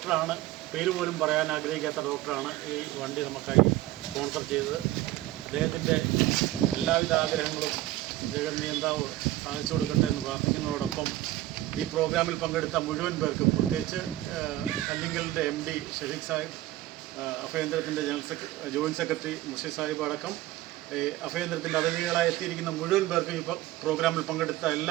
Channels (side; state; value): left; quieter; 15.7 dB